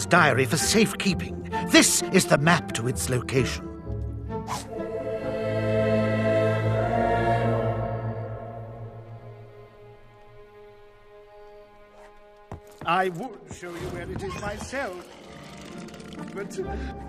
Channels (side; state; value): both; identical; correlation 1.00